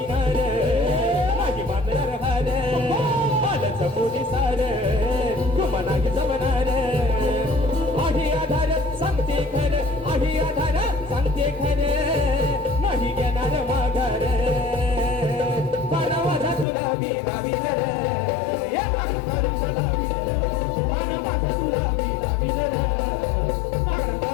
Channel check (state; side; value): drops out; right; at 16.7 s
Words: नाही मानणार हार. आलंच मुनी सार, तुम्हा नाही जमणार. आहे आधार, सांगते खरं, आहे आधार, सांगते खरं, नाही घेणार माघार. गुलाबी नवीन रे हे मागणं करून गुलाबी रे आहा माझा गुलाबी नवीन रे मागणं